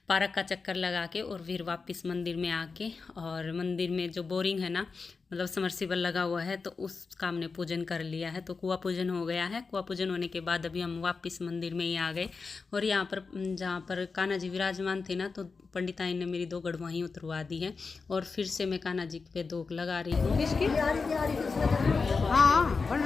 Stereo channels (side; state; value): right; quieter; 4.6 dB